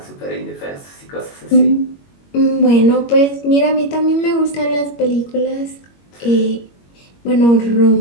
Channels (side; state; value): right; late; 21 ms